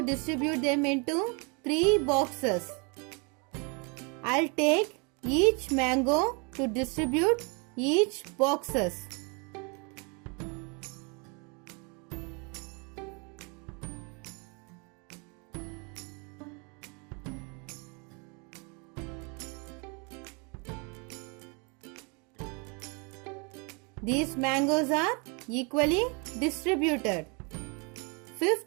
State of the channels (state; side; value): quieter; left; 32.7 dB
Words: distribute them into 3 boxes. I'll take each mango to distribute each boxes. These mangoes are equally distributed.